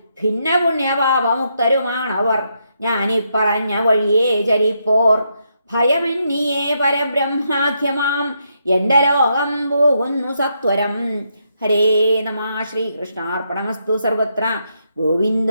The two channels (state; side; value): inverted; both; correlation -0.79